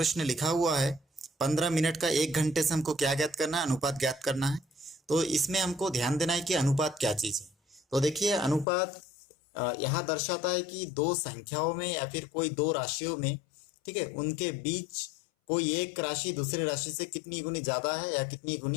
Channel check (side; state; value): right; drops out; at 8.7 s